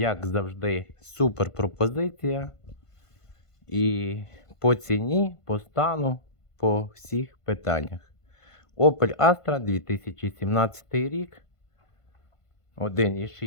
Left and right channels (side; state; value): right; late; 1.5 ms